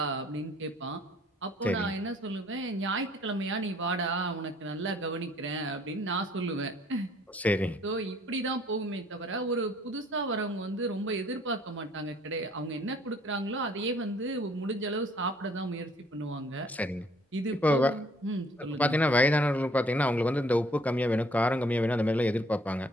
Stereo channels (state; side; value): normal; both; correlation 0.60